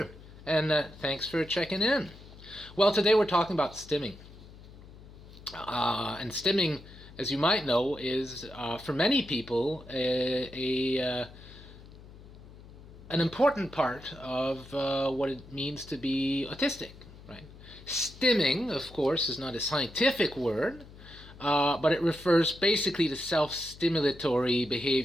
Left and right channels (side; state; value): left; noise; hum, 19 dB below the sound